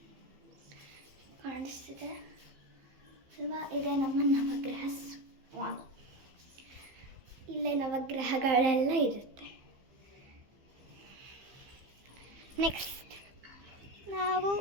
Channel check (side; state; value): left; late; 15 ms